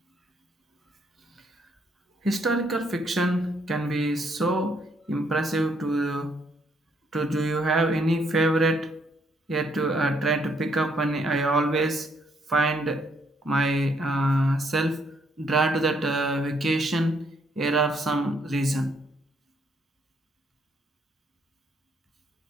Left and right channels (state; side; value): normal; both; correlation 0.70